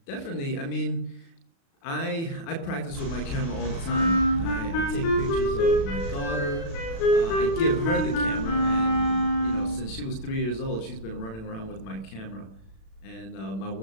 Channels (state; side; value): late; right; 36 ms